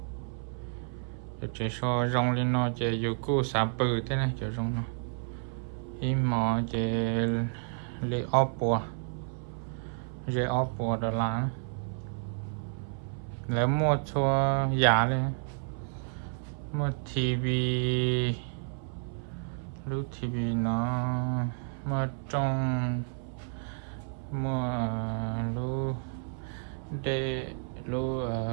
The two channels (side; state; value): left; silent; 57 dB below the other